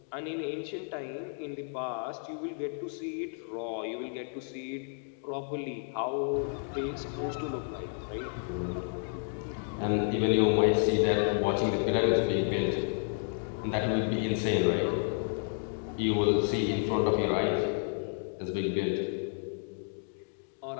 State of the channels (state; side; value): silent; right; 57 dB below the other